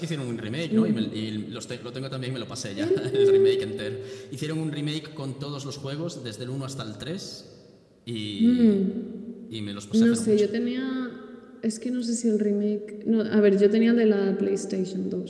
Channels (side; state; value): both; identical; correlation 1.00